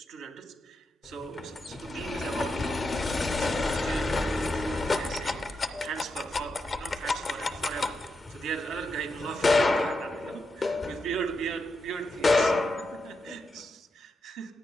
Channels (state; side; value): normal; both; correlation 0.86